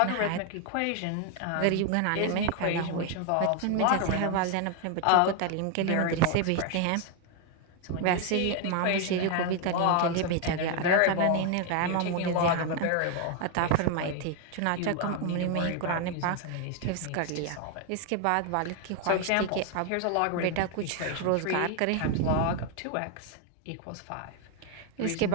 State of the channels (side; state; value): both; different; correlation 0.01